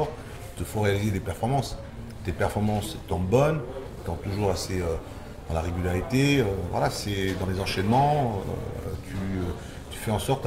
il te faut réaliser des performances. Tes performances étant bonnes, étant toujours assez dans la régularité, voilà, c'est dans les enchaînements, tu fais en sorte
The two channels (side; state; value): both; identical; correlation 1.00